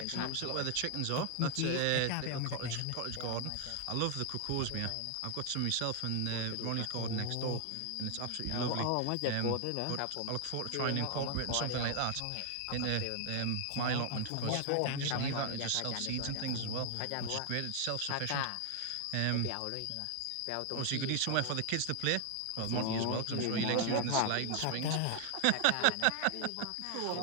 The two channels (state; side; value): different; both; correlation 0.00